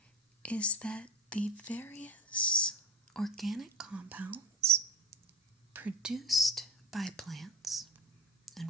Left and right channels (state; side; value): normal; both; correlation 0.30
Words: is that the various organic compounds produced by plants and